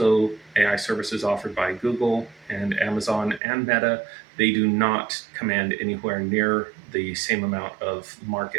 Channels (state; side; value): drops out; left; at 3.4 s